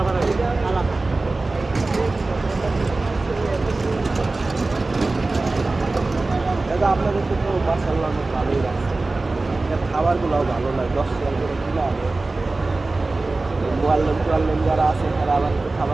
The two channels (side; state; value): left; quieter; 3.3 dB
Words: আসে আলাদা। দাদা আপনাদের তো মাশাআল্লাহ অনেক ভালোই লাগছে, খাবারগুলোও ভালো লাগে, 10 টাকা করে কিনা আনে। মোয়াল্লেম যারা আছে তারা আবার একটু